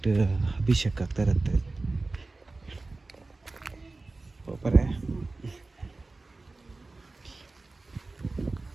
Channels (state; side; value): quieter; left; 3.4 dB